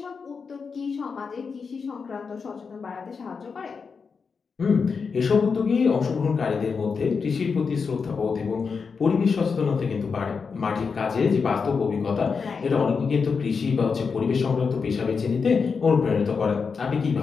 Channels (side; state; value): right; quieter; 5.4 dB